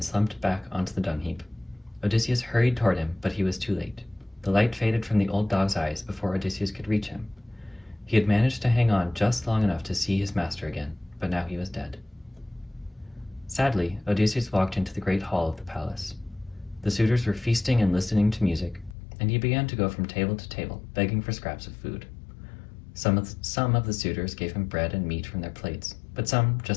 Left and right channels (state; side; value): drops out; right; at 18.9 s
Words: slumped back onto the dung heap. Odysseus hurried toward him, but he was too late. The light faded from the old dog's eyes before Odysseus could reach him. He had managed to hang on just long enough to see his master again, but now he was dead. Sadly, Odysseus walked into the great hall of the palace. The suitors were feasting and listening to music, and he began to go from table to table, begging for scraps of food. Some of the suitors gave him bread and meat from their plates, but some